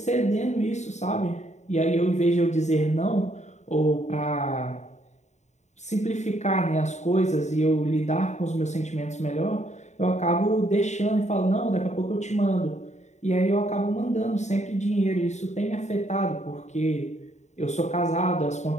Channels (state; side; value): late; right; 0.34 ms